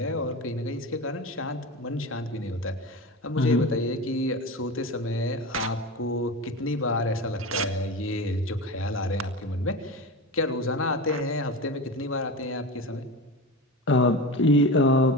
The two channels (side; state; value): both; normal; correlation 0.26